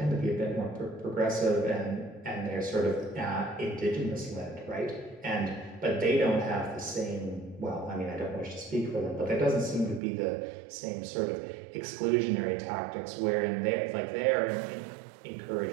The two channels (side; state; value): left; drops out; at 10.0 s